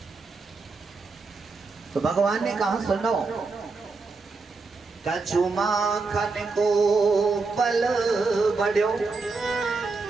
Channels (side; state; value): left; quieter; 4.1 dB